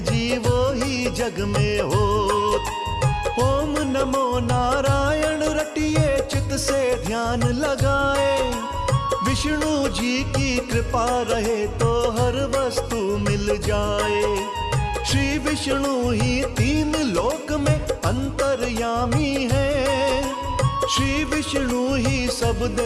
जी वो ही जग में हो। ओम नमो नारायण रटिए चित से ध्यान लगाए, विष्णु जी की कृपा रहे तो हर वस्तु मिल जाए। श्री विष्णु ही 3 लोक में अंतर्यामी है, श्री विष्णु ही सब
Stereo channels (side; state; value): both; identical; correlation 1.00